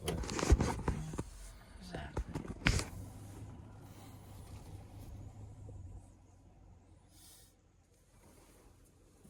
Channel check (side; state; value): both; identical; correlation 1.00